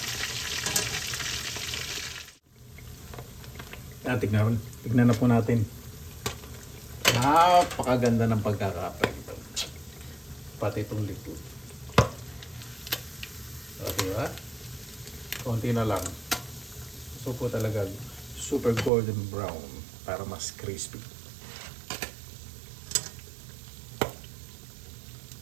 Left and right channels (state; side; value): drops out; left; at 18.9 s